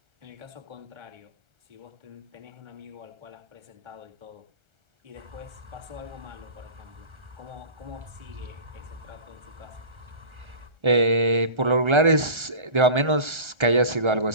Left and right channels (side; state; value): left; late; 1.3 ms